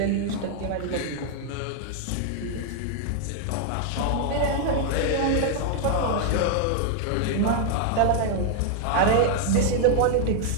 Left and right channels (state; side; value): different; both; correlation 0.00